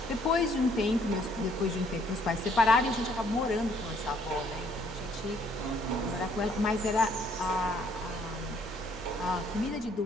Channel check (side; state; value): both; normal; correlation 0.65